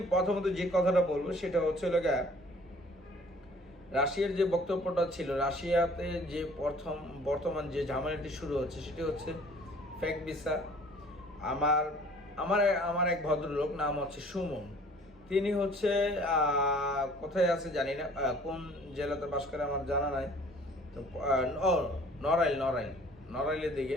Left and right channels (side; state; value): both; normal; correlation 0.53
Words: প্রথমত যে কথাটা বলবো সেটা হচ্ছে রাশিয়ার যে বক্তব্যটা ছিল, রাশিয়াতে যে বর্তমান যে ঝামেলাটি শুরু হচ্ছে সেটি হচ্ছে ফেক ভিসা। আমার আমার আমার এক ভদ্রলোক নাম সুমন। তিনি কোথায় আছে জানি না, কোন জেলাতে বাস করে আমার জানা নাই। তো নড়াইলের দিকে